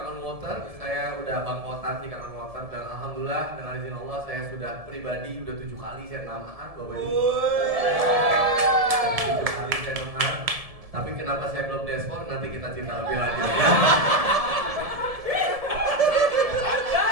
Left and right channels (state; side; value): late; left; 1.7 ms